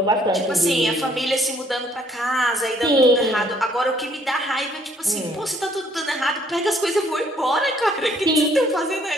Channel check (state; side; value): normal; both; correlation 0.64